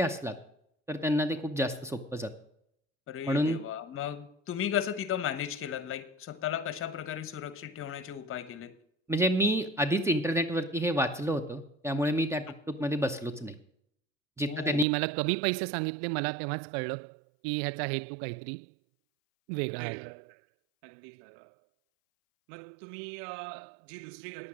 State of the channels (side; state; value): left; drops out; at 14.9 s